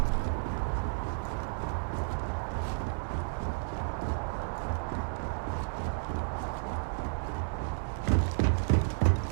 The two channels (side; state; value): left; silent; digital silence